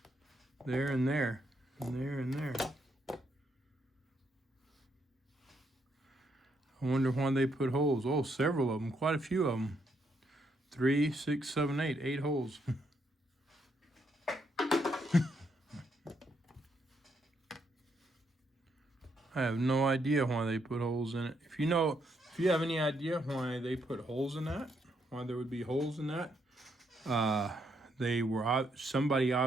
There and there, and there and there. I wonder why they put holes. Oh, several of them, quite a few of them. 3, 6, 7, 8, 8 holes. I have no idea why they put holes in it. If you have any idea why they put holes in that, why there would be holes in that, somebody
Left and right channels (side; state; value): both; normal; correlation 0.76